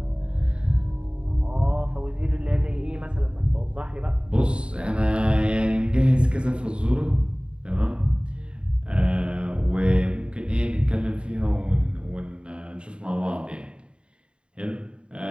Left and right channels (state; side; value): late; left; 0.054 ms